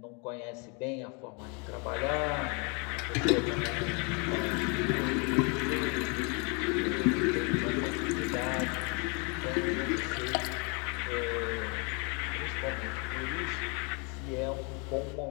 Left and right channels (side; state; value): right; quieter; 32.9 dB